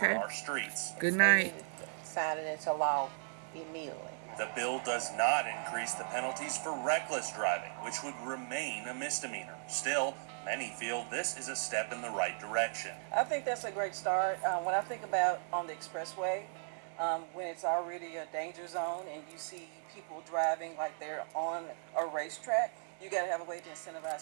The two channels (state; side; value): silent; left; digital silence